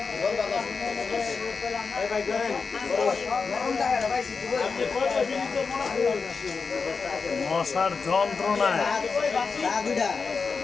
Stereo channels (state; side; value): quieter; right; 5.0 dB